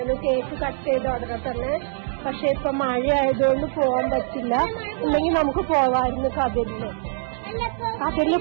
കേക്ക് കട്ട് ചെയ്ത ഉടനെ തന്നെ. പക്ഷെ ഇപ്പൊ മഴ ആയതുകൊണ്ട് പോകാൻ പറ്റില്ല. ഇല്ലെങ്കിൽ നമുക്ക് പോവായിരുന്നു കതിരില്. കതിരില്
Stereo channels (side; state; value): left; silent; 60 dB below the other